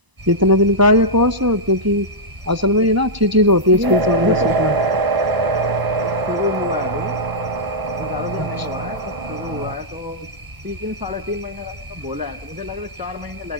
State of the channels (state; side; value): late; left; 1.0 ms